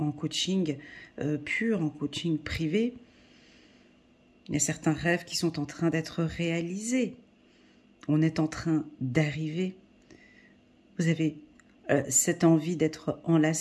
coaching pur, en coaching privé, il y a certains rêves qui sont en train d'être réalisés. On est en train d'arriver. Vous avez cette envie d'être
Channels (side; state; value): both; identical; correlation 1.00